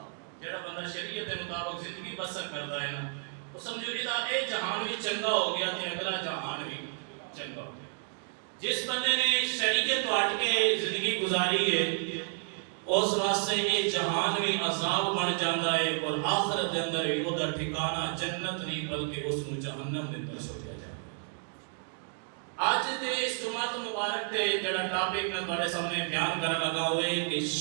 جڑا بندہ شریعت کے مطابق زندگی بسر کرتا ہے نا، وہ سمجھو جہاں اے جہان بھی چنگا ہو گیا تے اگلا جہان بھی چنگا ہو گیا۔ جس بندے نے شریعت تو ہٹ کے زندگی گزاری ہے اس واسطے یہ جہان بھی عذاب بن جاتا ہے اور آخرت دے اندر بھی وہ ٹھکانہ جنت نہیں بلکہ اس نو جہنم دے اندر سوچا جائے۔ آج دے اس جمعہ مبارک تے جڑا ٹاپک میں تواڈے سامنے بیان کرنا لگا ہوئے کہ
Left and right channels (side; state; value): left; silent; 57 dB below the other